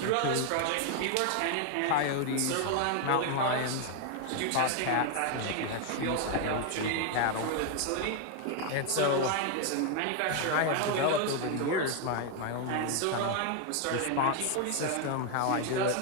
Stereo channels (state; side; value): different; both; correlation 0.01